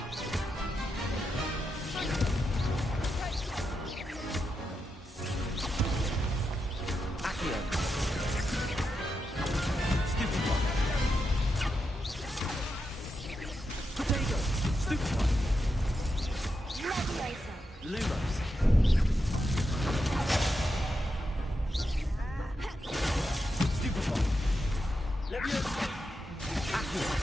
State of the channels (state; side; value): normal; both; correlation 0.86